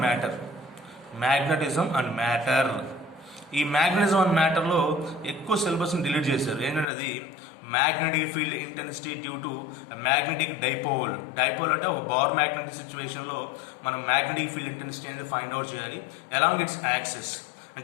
matter. ఈ మ్యాగ్నెటిజం అండ్ మ్యాటర్లో ఎక్కువ సిలబస్ని డిలీట్ చేశారు. ఏంటంటే అది magnetic field intensity due to magnetic dipole అంటే ఒక బార్ మ్యాగ్నెటిక్ సిచ్యువేషన్లో మనం మ్యాగ్నెటిక్ ఫీల్డ్ ఇంటెన్సిటీ అనేది ఫైండ్ అవుట్ చేయాలి అలాంగ్ ఇట్స్ యాక్సిస్.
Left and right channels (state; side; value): drops out; right; at 6.9 s